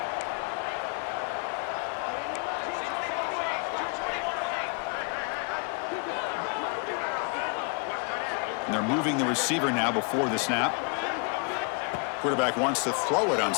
And they're moving the receiver now before the snap. Quarterback wants to throw it on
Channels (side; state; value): right; quieter; 37.4 dB